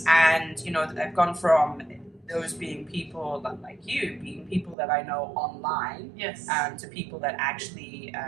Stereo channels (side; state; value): left; drops out; at 4.8 s